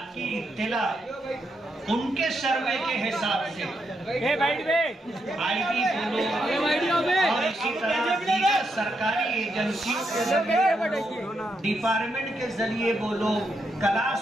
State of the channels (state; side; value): normal; both; correlation 0.81